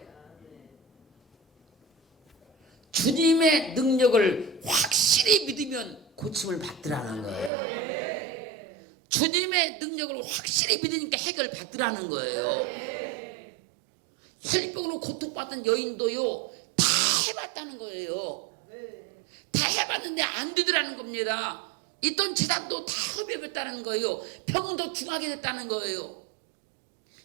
주님의 능력을 확실히 믿으면 고침을 받더라는 거예요. 주님의 능력을 확실히 믿으니까 해결을 받더라는 거예요. 혈병으로 고통받던 여인도요, 다 해봤다는 거예요. 다 해봤는데 안 되더라는 겁니다. 있던 재산도 다 허비했다는 거예요. 병은 더 중하게 됐다는 거예요.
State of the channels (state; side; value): drops out; left; at 7.5 s